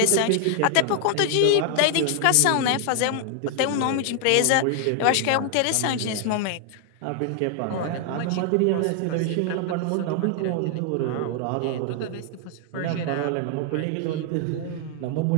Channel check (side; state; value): both; different; correlation 0.00